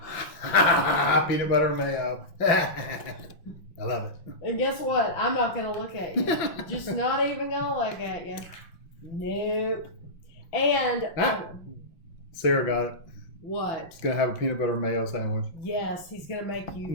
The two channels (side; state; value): right; late; 5.8 ms